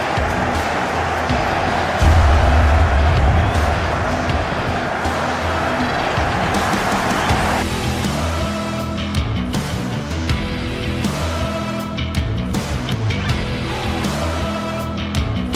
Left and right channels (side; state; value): both; identical; correlation 1.00